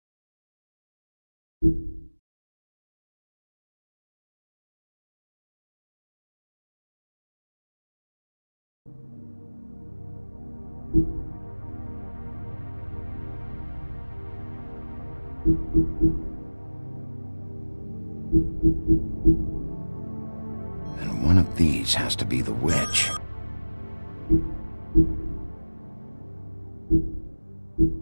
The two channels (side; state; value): both; inverted; correlation -1.00